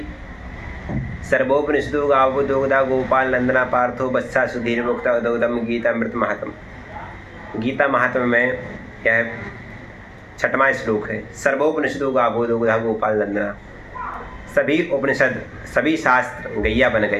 सर्वोपनिषदो गावो दोग्धा गोपाल नंदना पार्थो बत्सा सुधीर मुक्ता उदोदम गीता मृत महात्म। गीता महात्म में यह 6वां श्लोक है। सर्वोपनिषदो गावो दोग्धा गोपाल नंदना। सभी उपनिषद, सभी शास्त्र गैया बन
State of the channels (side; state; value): both; identical; correlation 1.00